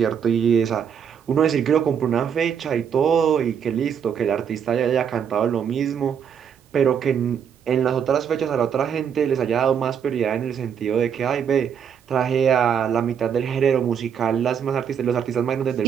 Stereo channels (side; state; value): left; quieter; 7.8 dB